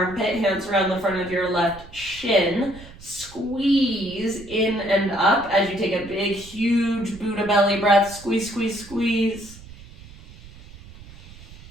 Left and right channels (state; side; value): noise; right; rumble, 19 dB below the sound